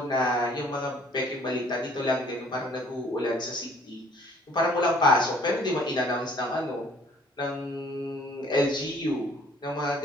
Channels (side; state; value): both; normal; correlation 0.58